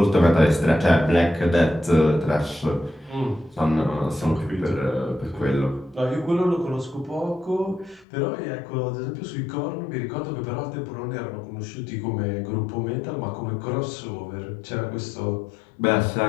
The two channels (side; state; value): right; drops out; at 8.1 s